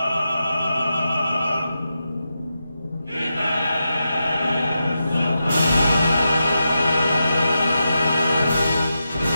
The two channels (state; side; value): inverted; both; correlation -0.88